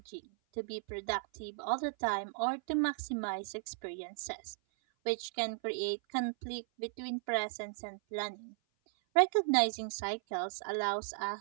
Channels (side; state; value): left; silent; 54 dB below the other